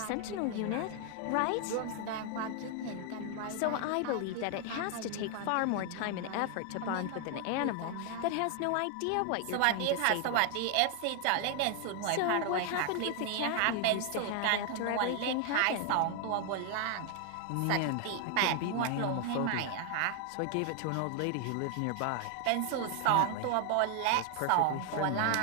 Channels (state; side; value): different; both; correlation 0.00